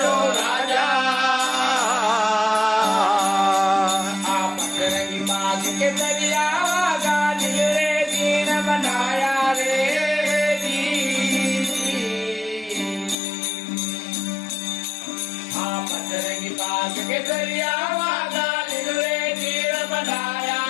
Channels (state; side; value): drops out; right; at 13.2 s